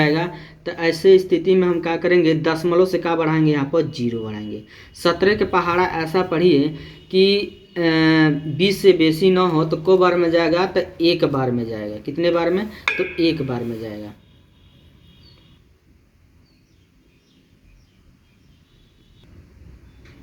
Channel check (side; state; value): both; identical; correlation 1.00